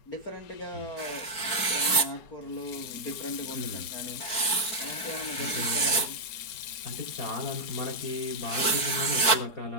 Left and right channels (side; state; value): right; late; 4.6 ms